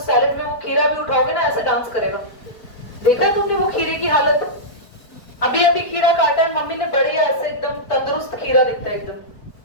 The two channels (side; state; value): right; late; 4.4 ms